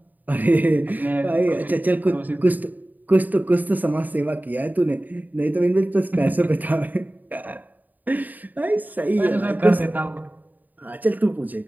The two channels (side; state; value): left; late; 0.084 ms